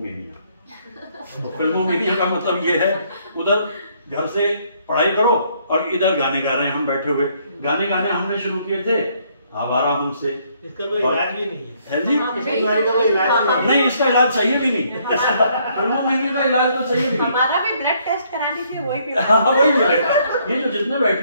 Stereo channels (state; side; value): inverted; both; correlation -0.68